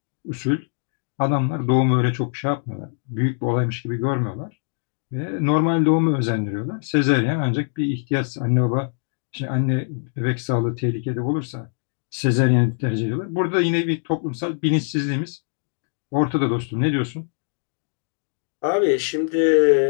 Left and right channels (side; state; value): right; silent; digital silence